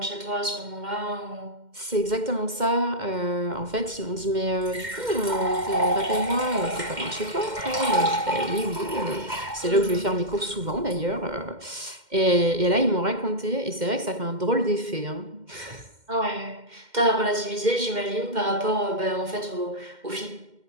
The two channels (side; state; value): left; late; 2.1 ms